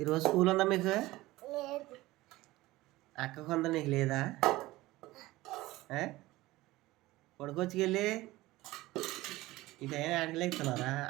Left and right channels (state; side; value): quieter; left; 18.5 dB